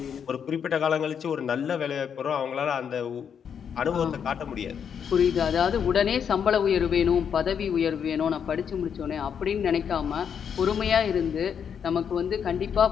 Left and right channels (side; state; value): right; quieter; 7.6 dB